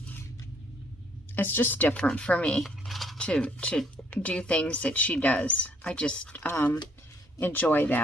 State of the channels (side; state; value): both; normal; correlation 0.66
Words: It's just different for me to do things that she does. I just enjoy